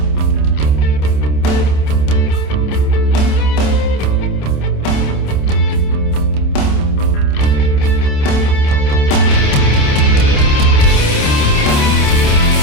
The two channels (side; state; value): right; late; 27 ms